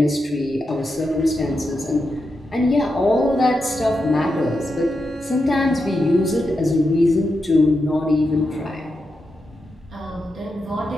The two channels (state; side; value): normal; both; correlation 0.87